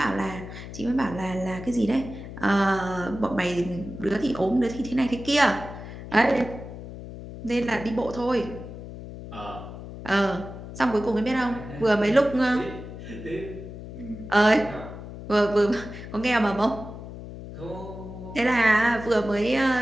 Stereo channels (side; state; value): left; noise; hum, 12 dB below the sound